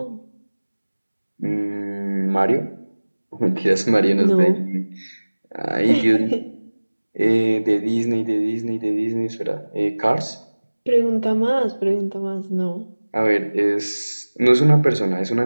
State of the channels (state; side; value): inverted; both; correlation -1.00